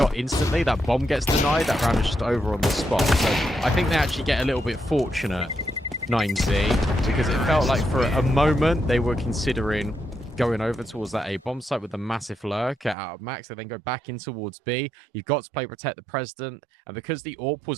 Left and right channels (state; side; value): drops out; left; at 13.0 s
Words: instantly, that bomb gets denied. That round is just over on the spot. So I think they actually get a little bit fortunate, 9Z, because it felt like for a moment they were considering going over towards that A bomb site with a massive lurker out of Max. They then go back in towards B. You've got to play Protect the President. And because the AWP